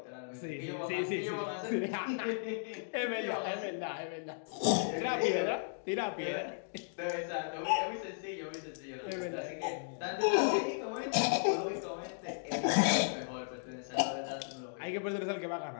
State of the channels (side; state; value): right; silent; digital silence